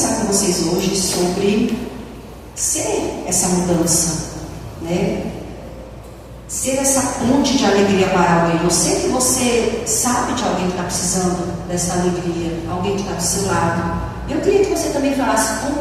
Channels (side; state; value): both; identical; correlation 1.00